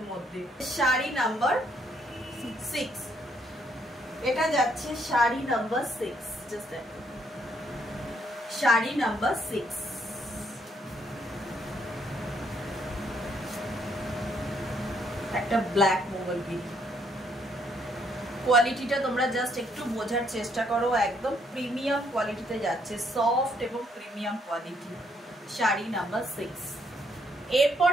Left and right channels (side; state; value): both; normal; correlation 0.70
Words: মধ্যে। শাড়ি নাম্বার 6, এটা যাচ্ছে শাড়ি নাম্বার 6। জাস্ট দেখো শাড়ি নাম্বার 6, একটা ব্ল্যাক মঙ্গলগিরি। কোয়ালিটিটা তোমরা জাস্ট একটু বোঝার চেষ্টা করো, একদম প্রিমিয়াম কোয়ালিটিতে যাচ্ছে, সফট এবং প্রিমিয়াম কোয়ালিটি। শাড়ি নাম্বার 6। এরপর